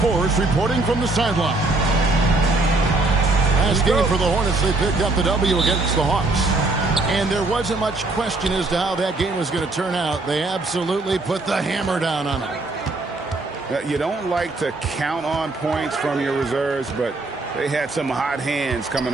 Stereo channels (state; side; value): quieter; left; 3.2 dB